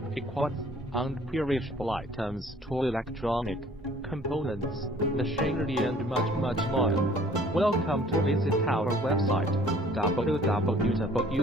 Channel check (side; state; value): both; normal; correlation 0.55